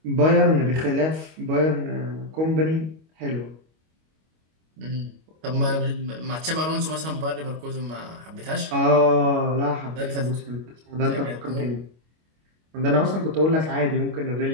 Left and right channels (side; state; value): left; late; 25 ms